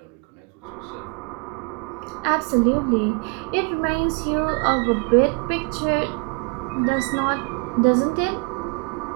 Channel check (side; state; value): left; quieter; 33.6 dB